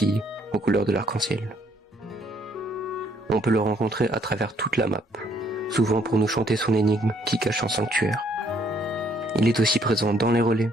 aux couleurs de l'arc-en-ciel. On peut le rencontrer à travers toute la map, souvent pour nous chanter son énigme qui cache un sanctuaire. Il est aussi présent dans les relais,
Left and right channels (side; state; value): both; normal; correlation 0.67